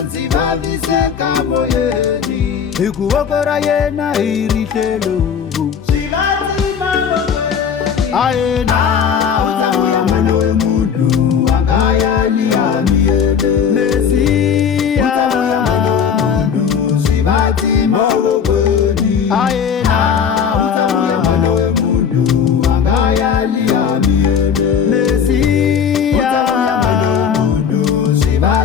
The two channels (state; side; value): quieter; right; 7.2 dB